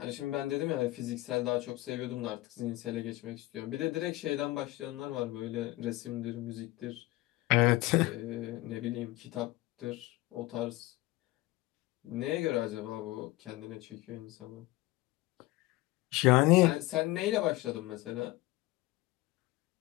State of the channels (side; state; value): right; quieter; 19.1 dB